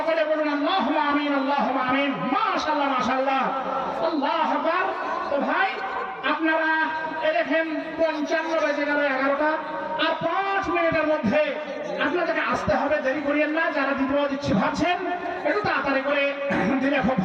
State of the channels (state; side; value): identical; both; correlation 1.00